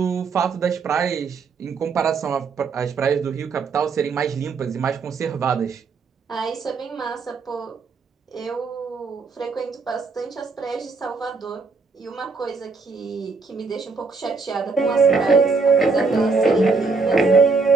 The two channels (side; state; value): left; quieter; 4.4 dB